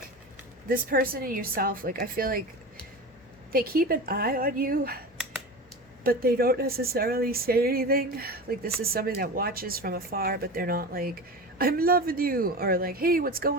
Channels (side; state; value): both; normal; correlation 0.29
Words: this person and yourself, like I feel like they keep an eye on you, but they don't necessarily say anything. Like this is somebody that watches from afar, but they're not like, I'm loving you, or like, hey, what's